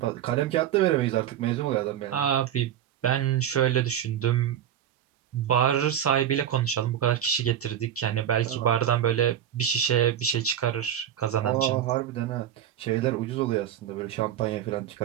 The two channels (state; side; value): quieter; left; 10.2 dB